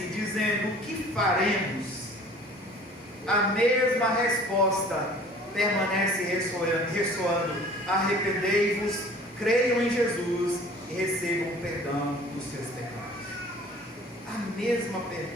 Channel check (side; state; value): both; normal; correlation 0.49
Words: dizendo: o que faremos? A mesma resposta permanece ressoando: arrependei-vos, creiam em Jesus e recebam o perdão dos seus pecados. A mesma